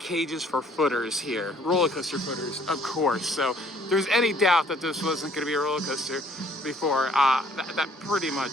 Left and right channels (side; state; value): both; normal; correlation 0.60